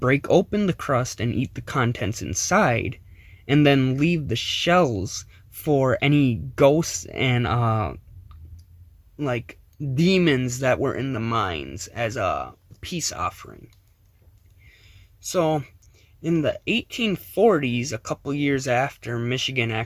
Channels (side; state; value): both; identical; correlation 1.00